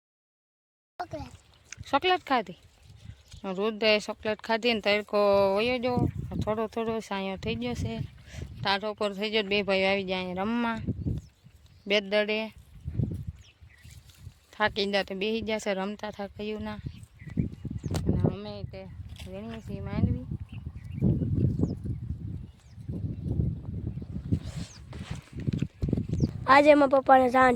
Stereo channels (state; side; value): identical; both; correlation 1.00